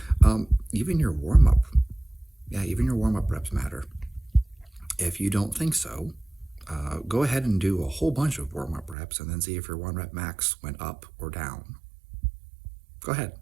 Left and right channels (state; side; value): drops out; left; at 9.0 s